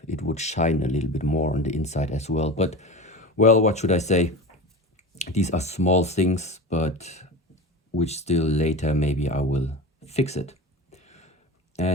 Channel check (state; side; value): normal; both; correlation 0.29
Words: it would shine a little bit more on the inside as well. But, well, what should I say? These are small things, but which still later maybe I will fix it.